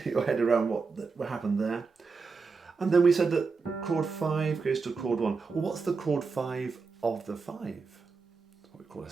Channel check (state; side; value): quieter; left; 4.7 dB